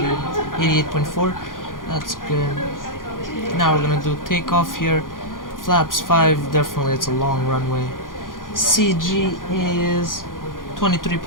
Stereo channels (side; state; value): right; late; 0.90 ms